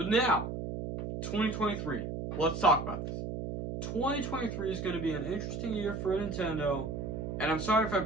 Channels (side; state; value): right; noise; hum, 5 dB below the sound